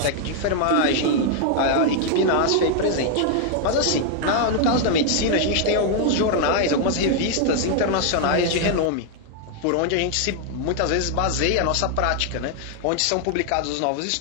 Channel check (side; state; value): both; different; correlation 0.00